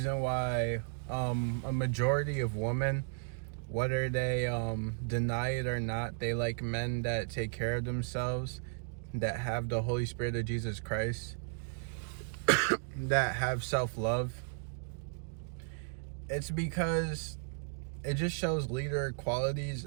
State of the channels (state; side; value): silent; left; digital silence